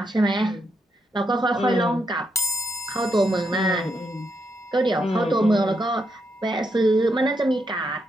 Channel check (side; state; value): both; normal; correlation 0.80